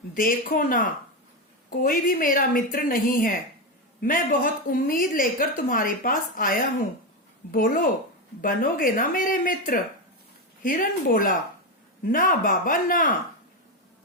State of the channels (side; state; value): both; normal; correlation 0.11